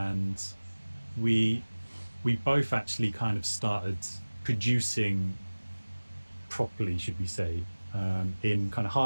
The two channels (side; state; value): both; inverted; correlation -1.00